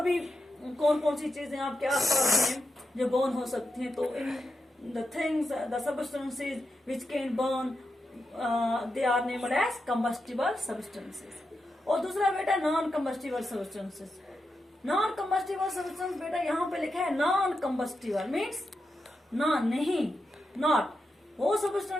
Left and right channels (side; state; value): both; normal; correlation 0.87